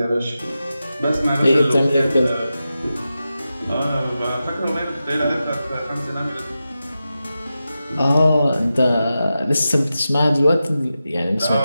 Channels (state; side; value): inverted; both; correlation -0.91